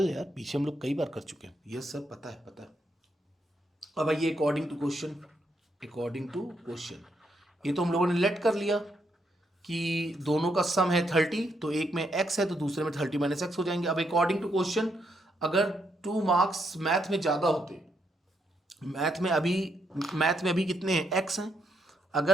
यार, पीछे हम लोग कई बार कर चुके हैं, ये सब पता है पता है। अब आइए according to question, according to question, ये तो हम लोगों ने लेट कर लिया कि दोनों का सम है 30, तो एक में x है तो दूसरे में 30 - x हो जाएंगे। अब अकॉर्डिंग टू क्वेश्चन, अगर 2 मार्क्स मैथ में ज़्यादा होते, मैथ में अभी कितने हैं x हैं,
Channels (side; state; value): both; normal; correlation 0.77